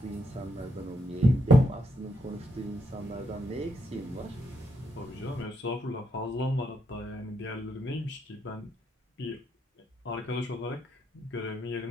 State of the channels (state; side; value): normal; both; correlation 0.79